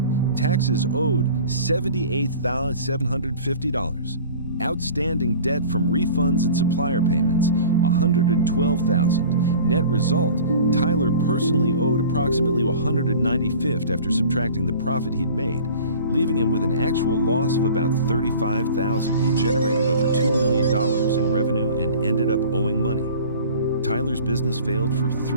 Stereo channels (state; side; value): inverted; both; correlation -0.43